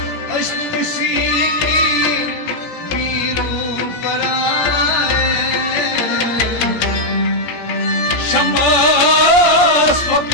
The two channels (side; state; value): right; late; 17 ms